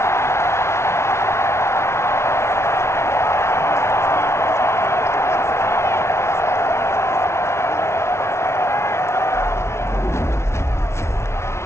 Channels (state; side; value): late; right; 0.13 ms